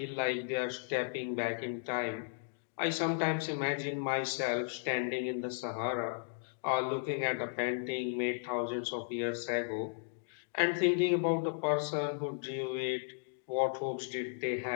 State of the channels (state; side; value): silent; right; digital silence